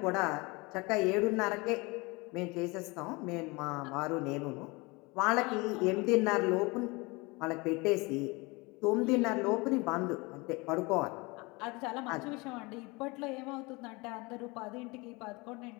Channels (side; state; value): right; quieter; 25.7 dB